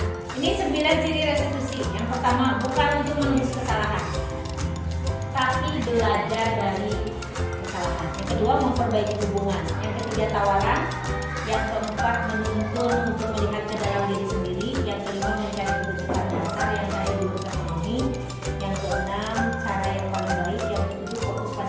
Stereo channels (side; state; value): both; identical; correlation 1.00